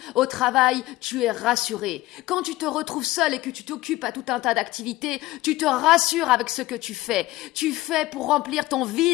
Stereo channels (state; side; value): quieter; right; 17.6 dB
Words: au travail, tu es rassuré. Quand tu te retrouves seul et que tu t'occupes à tout un tas d'activités, tu te rassures avec ce que tu fais. Tu fais pour remplir ton